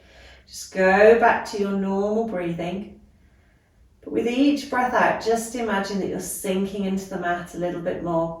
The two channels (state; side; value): identical; both; correlation 1.00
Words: Just go back to your normal breathing. But with each breath out, just imagine that you're sinking into the mat a little bit more.